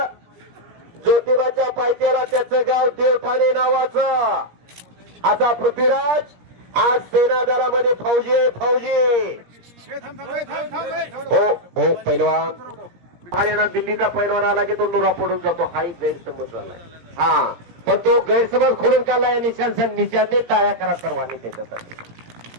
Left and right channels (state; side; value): late; left; 17 ms